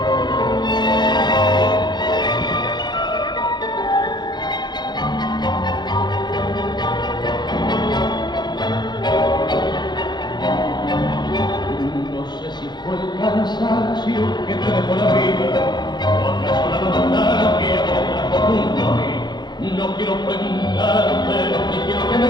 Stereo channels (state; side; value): late; right; 0.21 ms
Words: No sé si fue el cansancio que te dejó la vida, o acaso la nostalgia que te trajo junto a mí. No quiero preguntarte, ni quiero que me